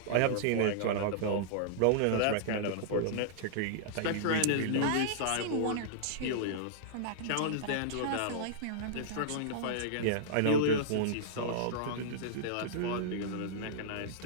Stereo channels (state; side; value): different; both; correlation -0.02